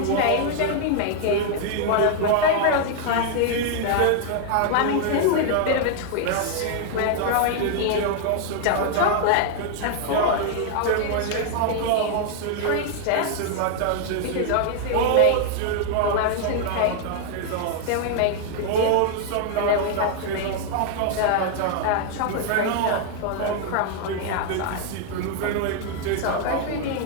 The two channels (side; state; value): both; different; correlation 0.00